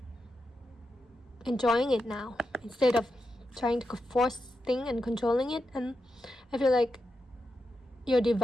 enjoying it now instead of trying to force things and controlling it. And I feel like your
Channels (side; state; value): both; normal; correlation 0.87